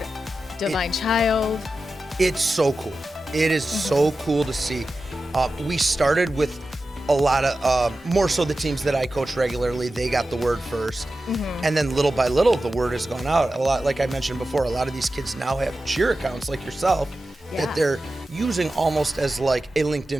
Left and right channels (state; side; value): normal; both; correlation 0.93